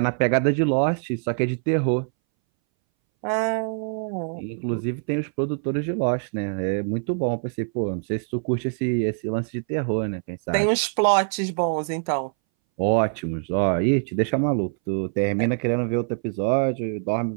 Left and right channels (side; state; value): left; silent; 61 dB below the other